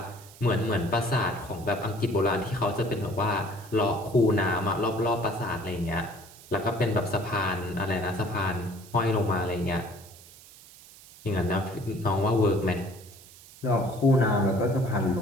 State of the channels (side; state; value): right; noise; hiss, 21 dB below the sound